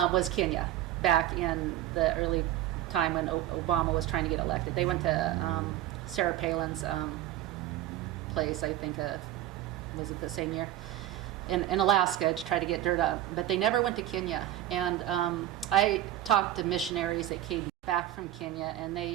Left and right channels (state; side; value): quieter; left; 13.2 dB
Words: Kenya, back in the early time when Obama was trying to get elected. They went to Sarah Palin's place, I think, was it the same year, in Alaska, to try to get dirt up. But they never went to Kenya. And I talked to missionaries that came back from Kenya, and they